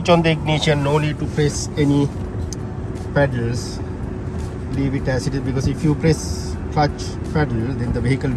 on the ignition, no need to press any pedals, leave it as it is, because if you press clutch pedal, then the vehicle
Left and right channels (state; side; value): identical; both; correlation 1.00